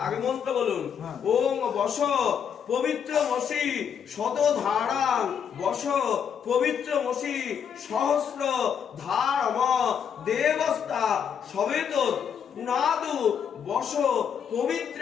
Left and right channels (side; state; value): right; quieter; 7.7 dB